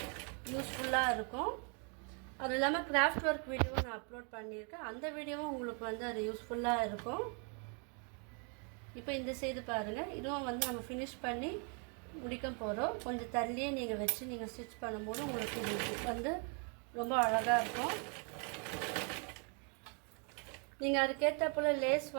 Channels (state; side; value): quieter; left; 38.4 dB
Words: யூஸ்ஃபுல்லாக இருக்கும். அது இல்லாமல் கிராஃப்ட் ஒர்க் வீடியோவை நான் அப்லோட் பண்ணியிருக்கேன். அந்த வீடியோவும் உங்களுக்கு வந்து அது யூஸ்ஃபுல்லாக இருக்கும். இப்போ இந்த சைடு பாருங்கள், இதுவும் வந்து நம்ம ஃபினிஷ் பண்ணி முடிக்க போகிறோம். கொஞ்சம் தள்ளியே நீங்கள் வச்சு நீங்கள் ஸ்டிச் பண்ணும்போது உங்களுக்கு இது வந்து ரொம்ப அழகாக இருக்கும். நீங்கள் அதுக்கேற்ற போல் லேஸ்